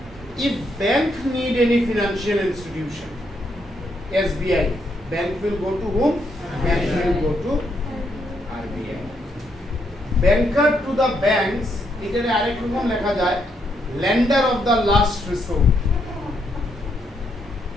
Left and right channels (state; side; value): normal; both; correlation 0.76